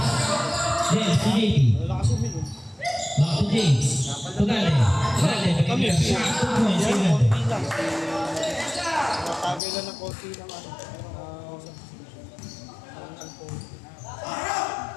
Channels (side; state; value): right; drops out; at 9.6 s